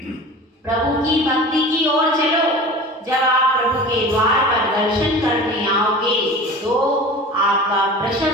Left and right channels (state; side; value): normal; both; correlation 0.37